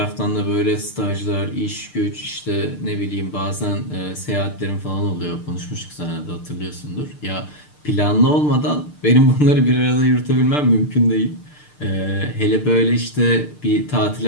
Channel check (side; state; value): right; late; 6.7 ms